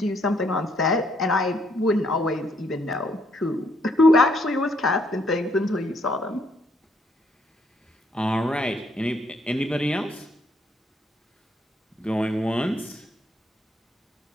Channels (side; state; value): both; normal; correlation 0.70